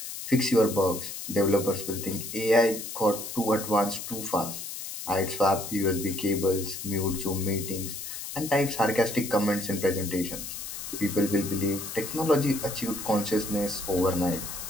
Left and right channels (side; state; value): left; noise; hiss, 8 dB below the sound